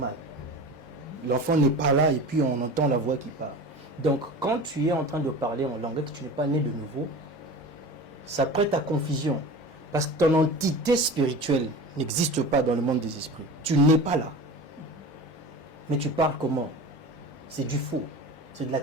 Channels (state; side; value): normal; both; correlation 0.34